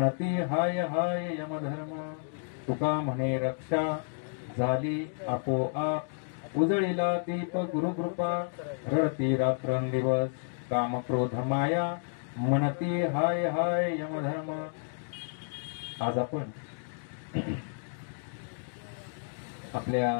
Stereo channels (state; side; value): silent; right; digital silence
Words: हाय हाय यमधर्म तुका म्हणे रक्षा झाली आपोआप उजळीला दीप गुरुकृपा रडती रात्रंदिवस काम क्रोध माया म्हणती हाय हाय यमधर्म. आज आपण आपल्या